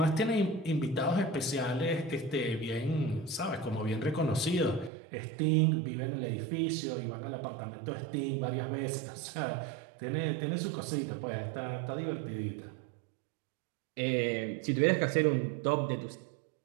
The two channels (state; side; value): drops out; left; at 4.9 s